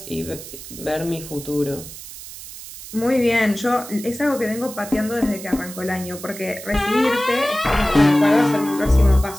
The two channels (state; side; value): noise; right; hiss, 13 dB below the sound